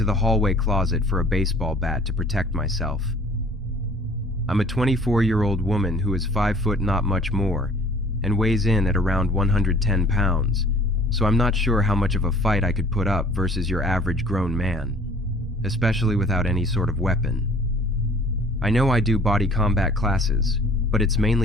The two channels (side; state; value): both; normal; correlation 0.52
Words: the hallway closet for a baseball bat to protect myself. I'm a 24-year-old woman who is 5 foot not much more, and weighs in at around 110 pounds, so I'm not sure how much of a fight I could put up versus your average grown man, especially without any sort of weapon. I know I do body combat classes, but it's